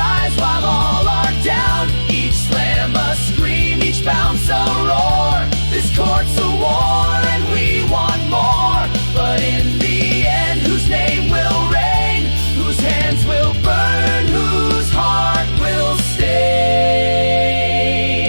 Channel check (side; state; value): both; inverted; correlation -1.00